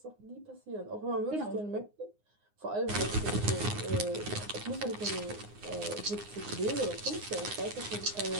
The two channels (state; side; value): late; left; 9.7 ms